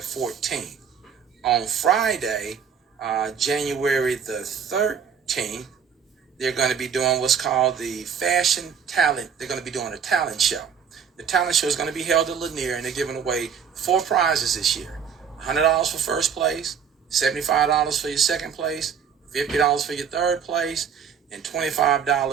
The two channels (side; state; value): left; quieter; 7.1 dB